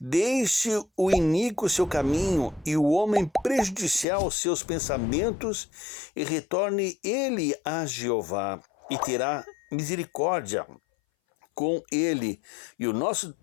o iníquo seu caminho e o homem prejudicial seus pensamentos, e retorne ele a Jeová, e terá misericórdia com ele, e o nosso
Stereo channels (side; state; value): right; drops out; at 4.0 s